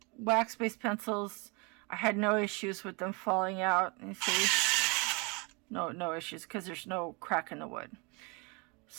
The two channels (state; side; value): quieter; left; 30.2 dB